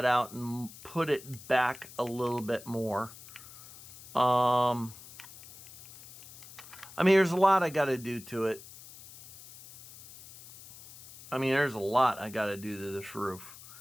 out and put it back a little bit more. I mean, there's a lot I got to do to it. There's a lot I got to do to this roof.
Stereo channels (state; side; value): noise; left; hiss, 18 dB below the sound